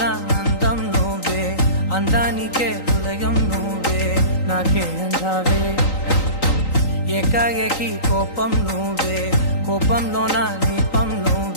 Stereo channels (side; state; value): right; late; 3.9 ms